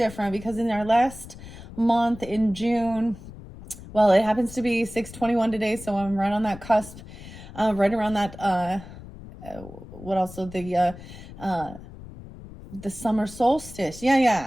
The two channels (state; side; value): noise; left; rumble, 15 dB below the sound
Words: because in our last month in June, well, it happens to be 6/21 today, so I'm right on that cusp, right around that what also the summer solstice.